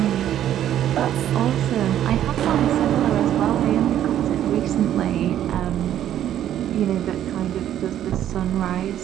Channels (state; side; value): quieter; left; 11.2 dB